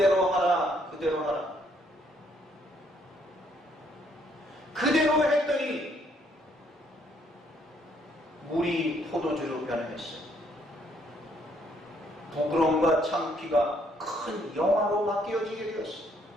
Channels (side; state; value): both; normal; correlation 0.68